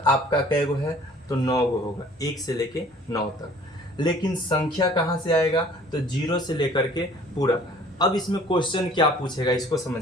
आपका कै गो है? तो 9 गो होगा, 1 से लेके 9 तक। लेकिन संख्या कहाँ से आएगा? तो 0 से लेकर के पूरा। अब इसमें क्वेश्चन क्या पूछेगा, इसको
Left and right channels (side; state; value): both; normal; correlation 0.52